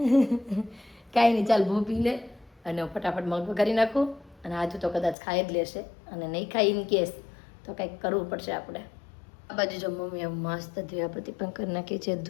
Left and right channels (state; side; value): drops out; right; at 5.2 s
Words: કાંઈ નહીં, ચાલ ભૂ પી લે અને ફટાફટ મગ વઘારી નાખું. અને આજુ તો કદાચ ખાઈ જ લેશે, અને નહીં ખાઈ ઇન કેસ તો કંઈક કરવું પડશે આપણે. આ બાજુ જો મમ્મીએ મસ્ત દીવાબત્તી પણ કરી નાખી છે,